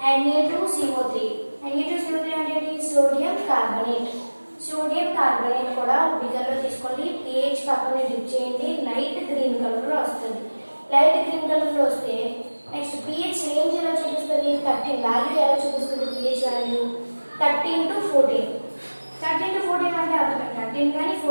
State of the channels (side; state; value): both; inverted; correlation -1.00